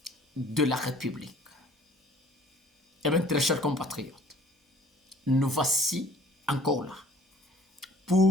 de la République. Eh bien, très chers compatriotes, nous voici encore là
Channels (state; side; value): normal; both; correlation 0.53